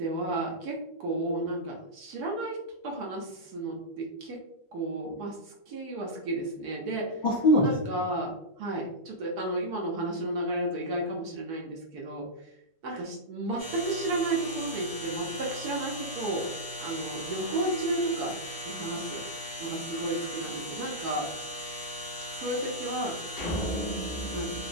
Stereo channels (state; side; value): normal; both; correlation -0.09